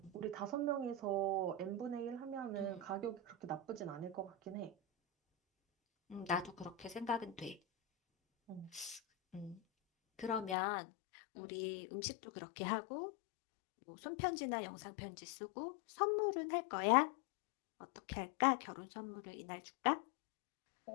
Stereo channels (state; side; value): drops out; right; at 10.6 s